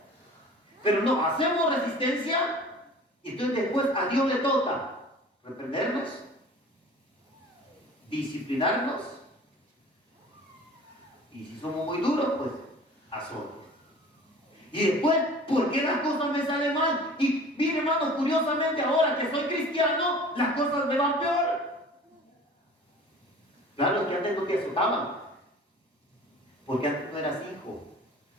Pero no, hacemos resistencia y entonces después a Dios le toca reprendernos, disciplinarnos y si somos muy duros, pues azote. Y después, ¿por qué las cosas me salen mal? Y mire, hermano, curiosamente ahora que soy cristiano, las cosas me van peor. Claro, que antes no te azotaban, porque antes no eras hijo.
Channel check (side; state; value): both; normal; correlation 0.44